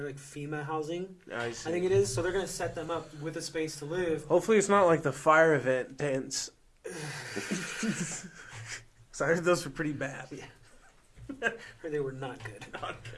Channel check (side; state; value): both; identical; correlation 1.00